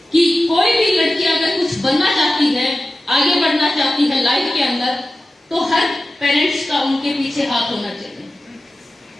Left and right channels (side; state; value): both; normal; correlation 0.94